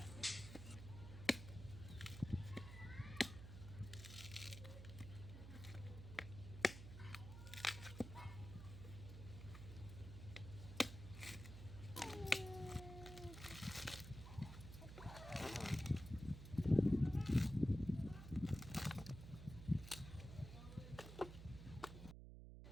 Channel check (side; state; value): right; noise; hum, 11 dB below the sound